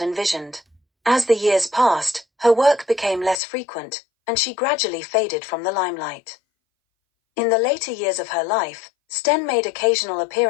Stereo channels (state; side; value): drops out; right; at 3.4 s